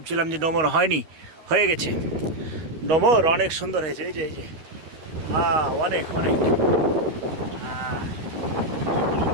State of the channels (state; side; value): late; left; 13 ms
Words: যে ডোমর হয়নি, হয়ে গেছে। ডোমর অনেক সুন্দর হয়েছে। এই যে অনেক অনেক